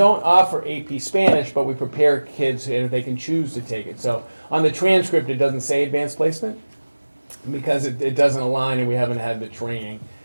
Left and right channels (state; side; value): inverted; both; correlation -1.00